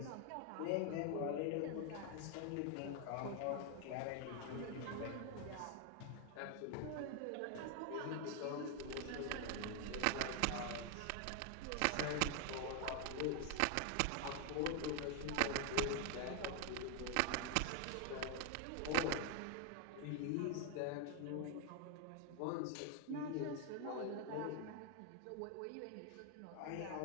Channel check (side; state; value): both; different; correlation 0.00